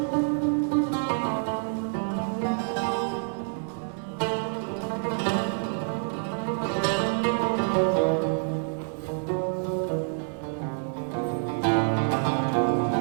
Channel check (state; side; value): silent; left; 60 dB below the other